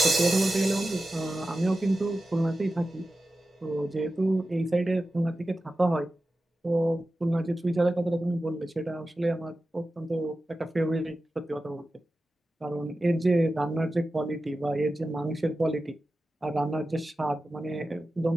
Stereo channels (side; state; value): both; normal; correlation 0.93